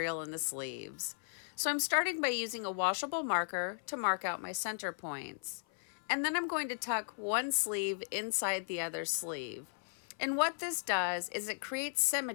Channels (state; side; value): silent; right; 54 dB below the other